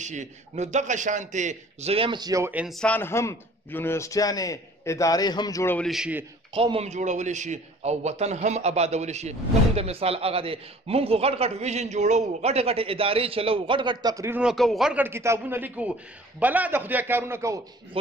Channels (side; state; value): both; normal; correlation 0.50